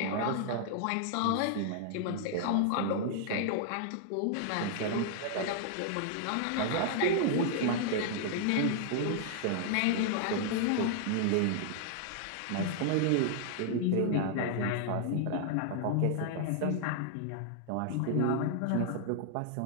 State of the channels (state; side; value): different; both; correlation 0.00